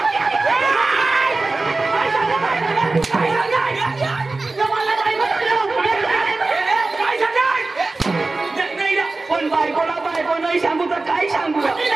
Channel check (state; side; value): quieter; left; 3.4 dB